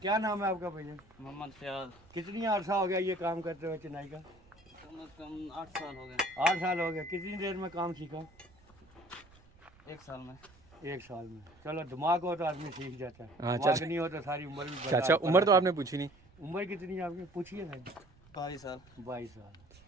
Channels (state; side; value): noise; right; rumble, 27 dB below the sound